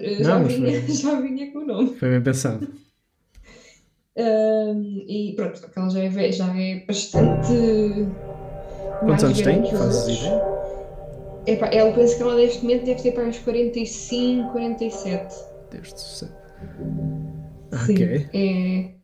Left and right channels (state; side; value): identical; both; correlation 1.00